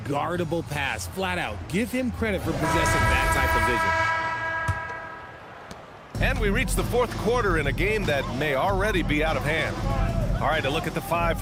pass, flat out. Give him credit for possessing that type of vision. And we reach the fourth quarter in a game that may already be out of hand. All right, a look at the five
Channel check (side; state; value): both; identical; correlation 1.00